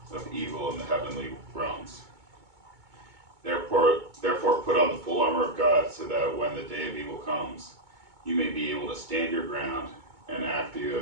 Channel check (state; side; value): late; left; 2.2 ms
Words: of evil in the heavenly realms. Therefore, put on the full armor of God, so that when the day of evil comes, you may be able to stand your ground, and after you